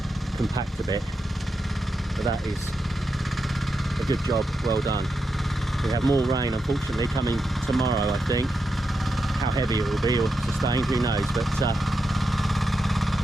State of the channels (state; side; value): normal; both; correlation 0.86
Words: compact a bit, but that is a good job, well done. We have more rain unfortunately coming tomorrow, I think. How heavy it will be or sustained, who knows, but